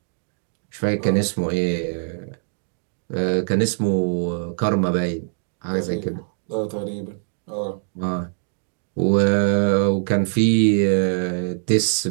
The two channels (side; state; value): left; silent; digital silence